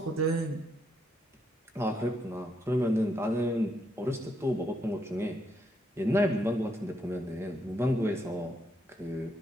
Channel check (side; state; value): both; normal; correlation 0.77